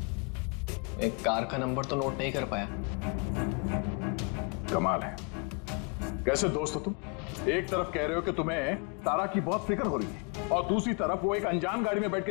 एक कार का नंबर तो नोट नहीं कर पाया। कमाल है, कैसे दोस्त हो तुम? एक तरफ कह रहे हो कि तुम्हें तारा की बहुत फिक्र हो रही है और दूसरी तरफ वो एक अनजान गाड़ी में बैठ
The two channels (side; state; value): right; quieter; 32.6 dB